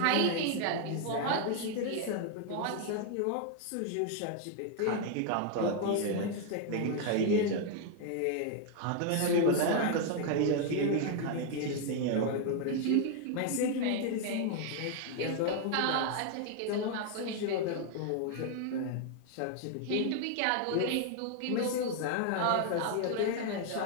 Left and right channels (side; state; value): both; different; correlation 0.00